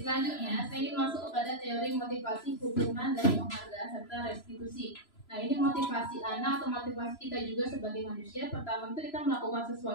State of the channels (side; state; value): right; late; 3.0 ms